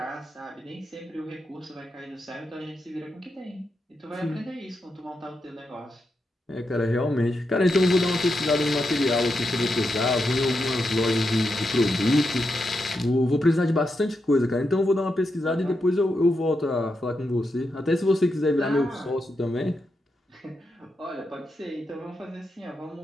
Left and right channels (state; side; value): normal; both; correlation 0.85